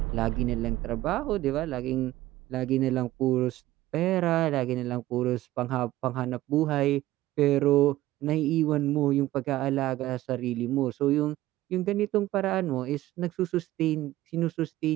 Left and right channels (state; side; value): quieter; left; 15.9 dB